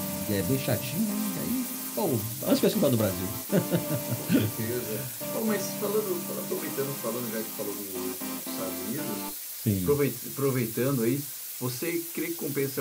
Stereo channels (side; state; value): both; identical; correlation 1.00